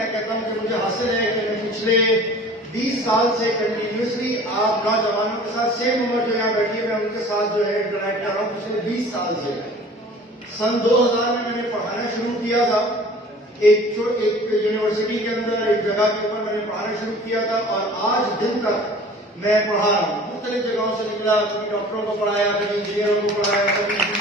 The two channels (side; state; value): both; normal; correlation 0.45